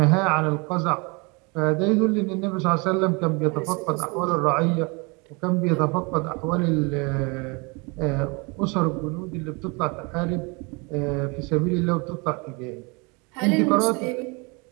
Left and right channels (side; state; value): left; quieter; 29.3 dB